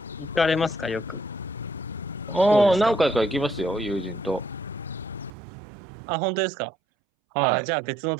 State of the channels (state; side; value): drops out; left; at 5.3 s